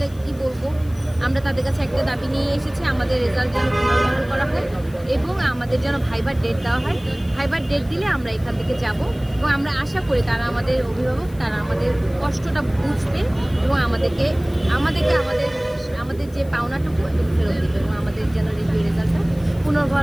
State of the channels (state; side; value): noise; left; hiss, 25 dB below the sound